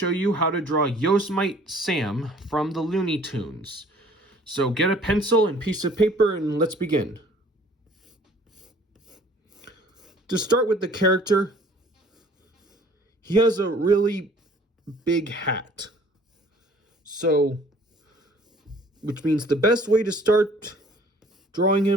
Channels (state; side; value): normal; both; correlation 0.54